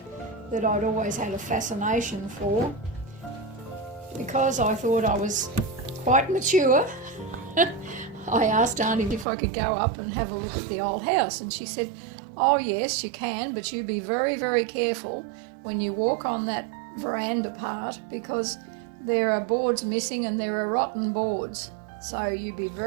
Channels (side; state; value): left; drops out; at 9.2 s